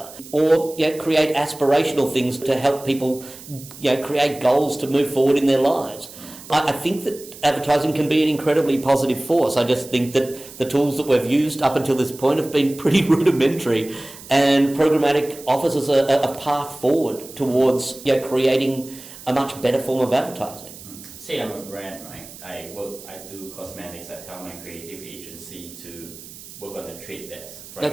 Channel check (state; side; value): noise; right; hiss, 17 dB below the sound